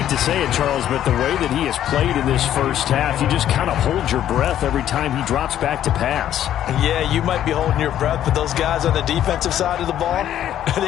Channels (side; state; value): right; quieter; 11.3 dB